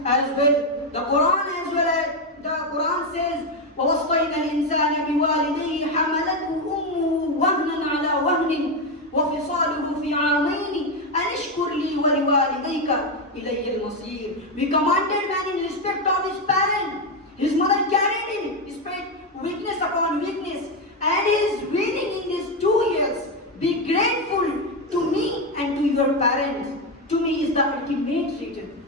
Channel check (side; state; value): both; normal; correlation 0.08